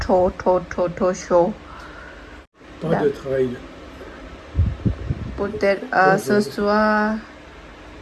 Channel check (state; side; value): identical; both; correlation 1.00